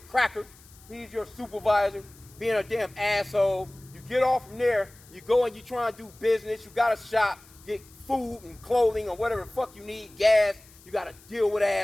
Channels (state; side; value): noise; left; hiss, 25 dB below the sound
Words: cracker, he's your supervisor, being a damn asshole. You get off from there, you go and you try and do business, you got to shop, get food and clothing or whatever the fuck you need, gas, you got to deal with